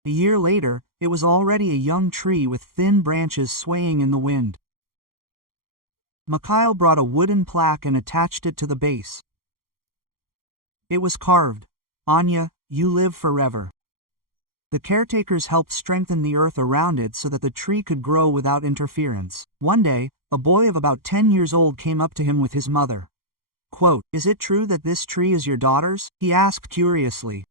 A year later, it was already a young tree with thin branches swaying in the wind. Mikhail brought a wooden plaque and attached it to the base. It was carved, "Anya, you live forever." The caretakers helped strengthen the earth around it so that the tree could grow without interference. One day, a boy of about 10 years old came up to him with his mother. Quote, "Is it true that this tree is your daughter's?" he asked curiously.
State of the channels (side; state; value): left; late; 0.92 ms